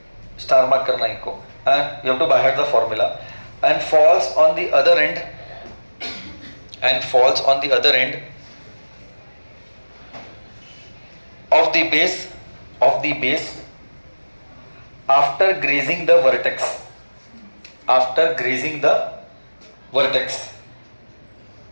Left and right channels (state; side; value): inverted; both; correlation -1.00